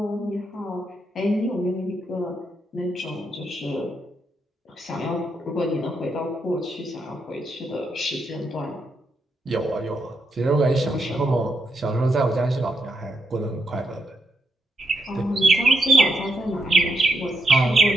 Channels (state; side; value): normal; both; correlation 0.80